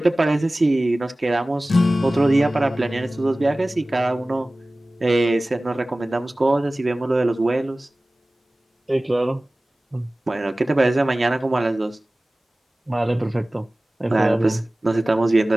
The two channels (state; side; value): normal; both; correlation 0.98